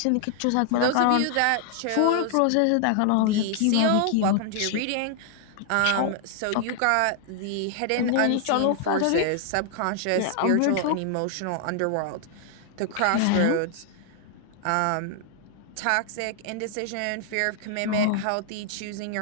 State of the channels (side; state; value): both; different; correlation 0.00